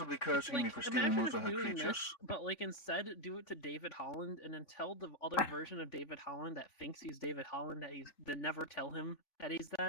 cursing me for stealing imagine most of her doing creatures. this, but like instead do it to David Holland, and then tell the other version of David Holland that thinks he's David Holland then never tell him that he's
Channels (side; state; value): right; late; 3.6 ms